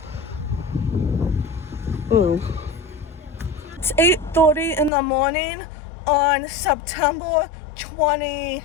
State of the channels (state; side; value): drops out; right; at 4.9 s